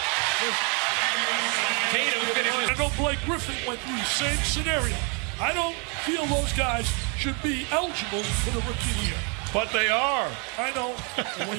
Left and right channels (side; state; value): left; quieter; 34.8 dB